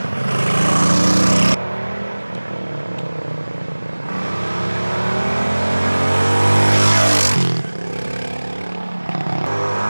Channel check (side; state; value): both; inverted; correlation -1.00